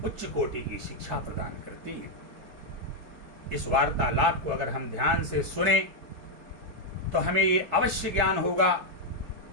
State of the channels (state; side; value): late; left; 4.6 ms